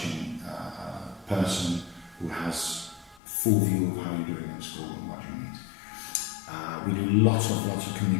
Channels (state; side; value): drops out; right; at 3.2 s